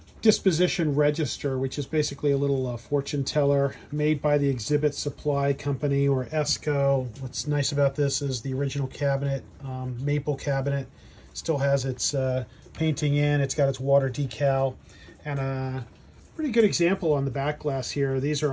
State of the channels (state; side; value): identical; both; correlation 1.00